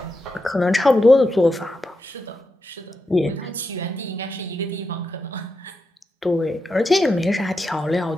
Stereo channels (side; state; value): both; normal; correlation 0.87